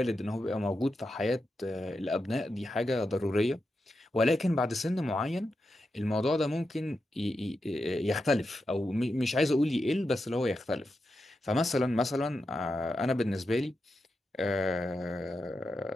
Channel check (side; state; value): both; normal; correlation 0.88